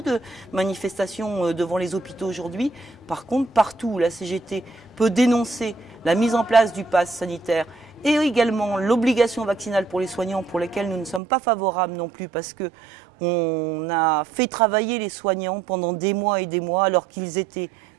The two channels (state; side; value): drops out; left; at 11.2 s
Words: de manifestations devant les hôpitaux aujourd'hui. Par contre, partout où la CGT peut dénoncer la mise en place du pass sanitaire et également l'obligation vaccinale pour les soignants, pour lesquels nous ne sommes pas favorables non plus, parce que on a fait travailler les soignants pendant des mois et des mois alors qu'ils étaient